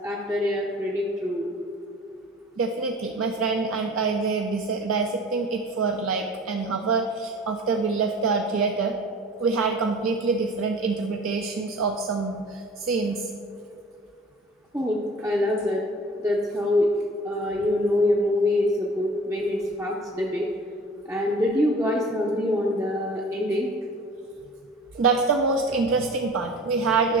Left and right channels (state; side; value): normal; both; correlation 0.44